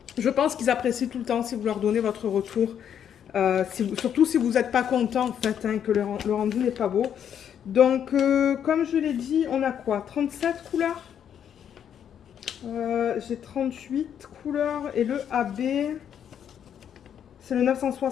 Je pense qu'ils apprécient tout le temps si vous leur donnez votre retour. Surtout si vous n'êtes pas content, en fait, hein, que le rendu n'est pas beau. Donc, comme je l'ai dit, on a quoi? 37 couleurs? J'ai 38 couleurs et le AB, c'est le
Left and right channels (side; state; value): right; quieter; 8.9 dB